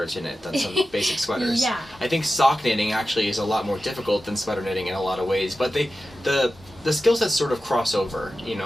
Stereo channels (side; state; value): both; normal; correlation 0.93